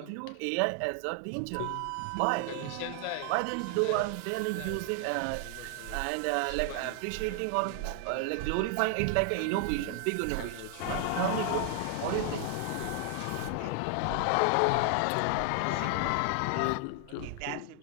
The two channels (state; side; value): different; both; correlation 0.00